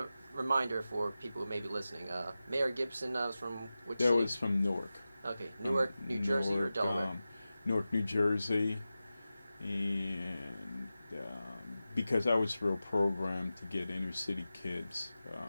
reminder for people who may be listening. Mayor Gibson was from which That city? was from Newark. Okay, Newark, New Jersey, or Delaware? Newark, New Jersey, and because I was real programmed to get inner city kids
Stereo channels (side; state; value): both; inverted; correlation -0.94